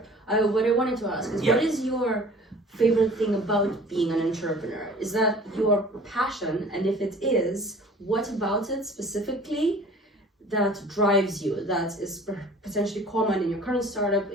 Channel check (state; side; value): normal; both; correlation 0.47